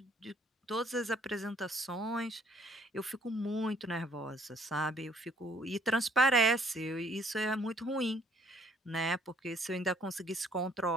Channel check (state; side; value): normal; both; correlation 0.61